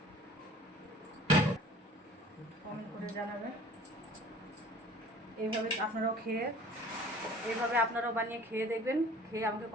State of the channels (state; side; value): normal; both; correlation 0.47